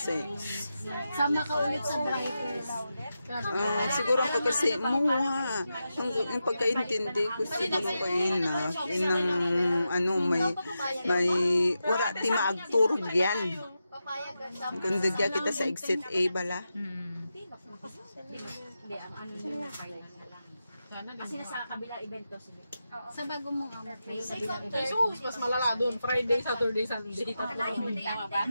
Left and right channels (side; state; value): both; inverted; correlation -0.89